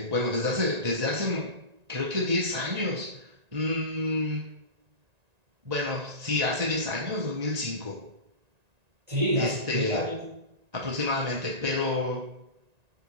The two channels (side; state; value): left; late; 1.9 ms